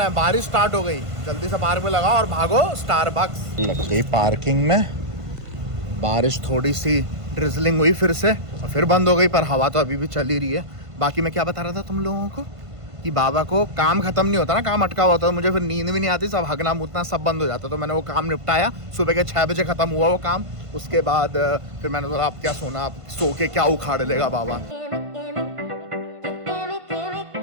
हैं, बारिश स्टार्ट हो गई। जल्दी से पार्क में लगाओ और भागो स्टारबक्स। लग गई पार्किंग में। बारिश थोड़ी सी ड्रिजलिंग हुई फिर से और फिर बंद हो गई, पर हवा तो अभी भी चल ही रही है। बाकी मैं क्या बता रहा था तुम लोगों को कि बाबा को काम खत्म नहीं होता ना, काम अटका हुआ होता, मुझे फिर नींद भी नहीं आती, सब हगना मुतना सब बंद हो जाता। तो मैंने वो काम निपटाया, सुबह के 6 बजे ख़त्म हुआ वो काम। उसके बाद फिर मैंने बोला अब क्या सोना, अब सो के क्या उखाड़ लेगा बाबा।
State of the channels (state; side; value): late; left; 1.5 ms